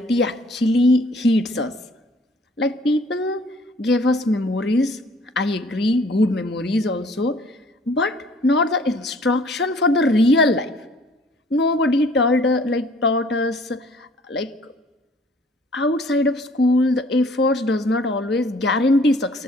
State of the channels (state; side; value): normal; both; correlation 0.56